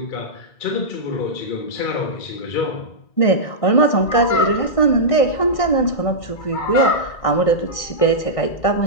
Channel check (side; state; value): right; late; 1.6 ms